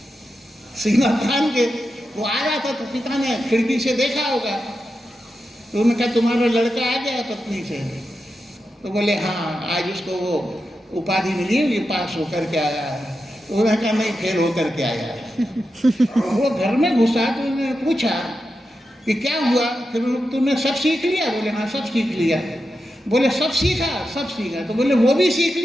सीना तान के वो आ रहा था, तो पिता ने खिड़की से देखा होगा। तो उन्होंने कहा तुम्हारा लड़का आ गया पत्नी से? तो बोले हाँ, आज उसको वो उपाधि मिली है, ये पास होकर के आया है। उन्होंने कहा नहीं, फेल होकर के आया है। वो घर में घुसा तो उन्होंने पूछा कि क्या हुआ? फिर तुमने सब सीख लिया? बोले हाँ, सब सीख लिया। बोले सब सीखा? सब सीखा। तो बोले वो भी सीख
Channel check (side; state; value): both; normal; correlation 0.89